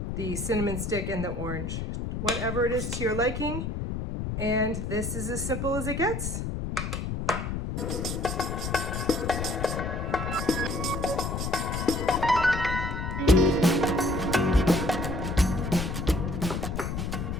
the cinnamon stick and the orange. Whatever it is to your liking, and this is as simple as it gets.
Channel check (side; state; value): left; noise; rumble, 3 dB below the sound